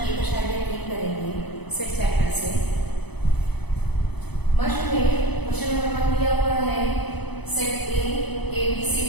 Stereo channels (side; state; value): right; late; 0.98 ms